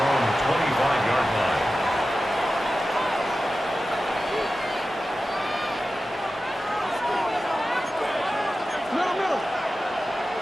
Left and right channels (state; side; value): normal; both; correlation 0.94